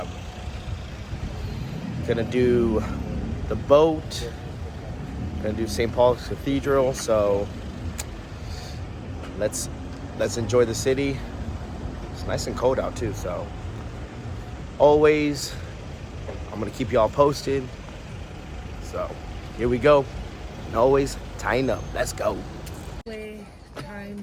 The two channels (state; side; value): identical; both; correlation 1.00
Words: do the boat, gonna do St. Paul's Cathedral, so let's enjoy the city. It's nice and cold out too, so always, I'm gonna keep y'all posted. So here we go. And always tying up. Let's go.